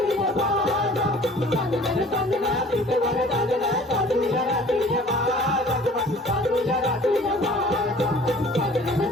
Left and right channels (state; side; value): normal; both; correlation 0.49